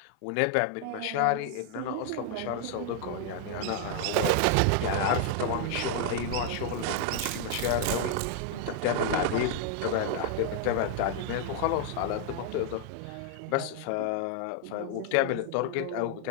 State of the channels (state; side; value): different; both; correlation 0.00